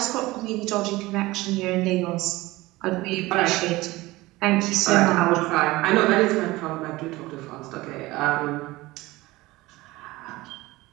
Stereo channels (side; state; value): left; quieter; 19.7 dB